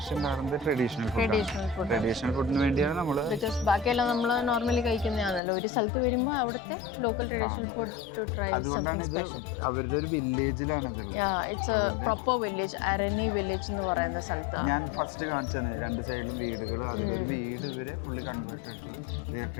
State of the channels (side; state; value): right; drops out; at 5.4 s